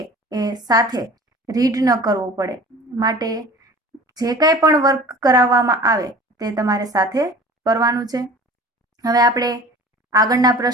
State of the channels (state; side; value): normal; both; correlation 0.43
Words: એ સાથે રીડ ન કરવો પડે। માટે જે કંઈ પણ વર્ક કરાવવામાં આવે તે તમારે સાથે કરવાનું છે। હવે આપણે આગળના